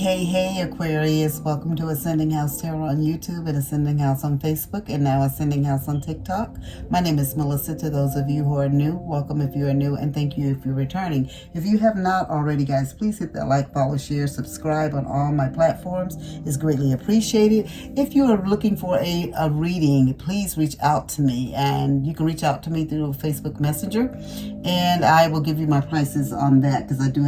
Aquarius. Welcome to Ascending House Tarot on YouTube and Ascending House on Facebook and now Ascending House on TikTok. My name is Melissa. To those of you who are new, welcome if you are new, and thank you if you're returning. If you have not already, guys, please hit that like, follow, share, subscribe on all my platforms. It's greatly appreciated. If you are looking for a reading, please reach out to me, and you can reach out to me through Facebook Messenger, and I will give you my prices on that because I do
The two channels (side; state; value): both; identical; correlation 1.00